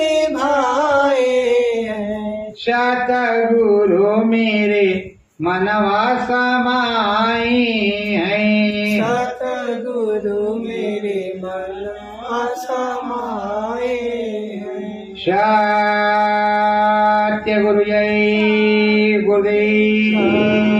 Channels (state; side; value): identical; both; correlation 1.00